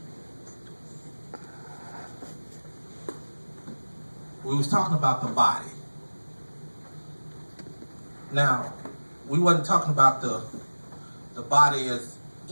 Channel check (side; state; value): both; inverted; correlation -1.00